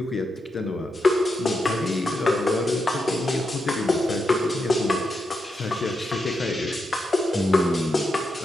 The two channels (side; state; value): both; normal; correlation 0.85